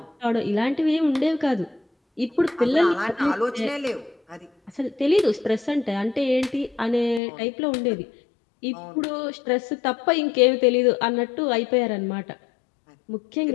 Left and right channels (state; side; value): drops out; right; at 7.2 s